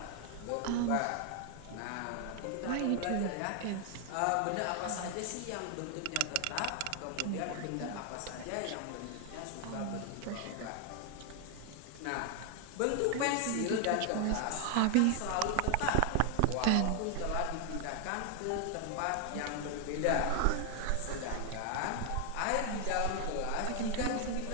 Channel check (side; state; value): both; different; correlation 0.00